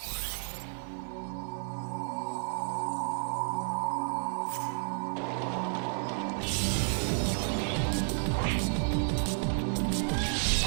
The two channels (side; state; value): left; silent; 57 dB below the other